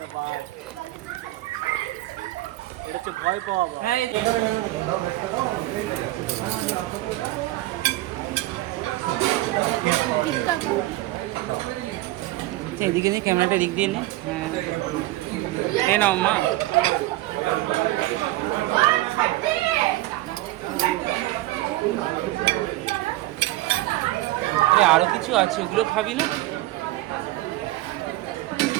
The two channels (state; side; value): quieter; left; 17.6 dB